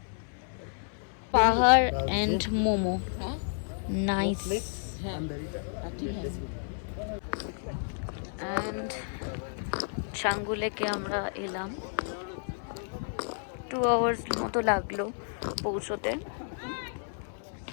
পাহাড় এন্ড মোমো, নাইস। অ্যান্ড ছাঙ্গুলেকে আমরা এলাম। 2 আওয়ার্স মতো লাগলো পৌঁছতে।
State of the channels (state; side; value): silent; right; 57 dB below the other